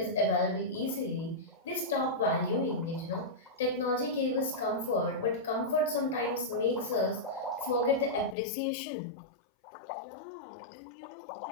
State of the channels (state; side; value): drops out; right; at 8.3 s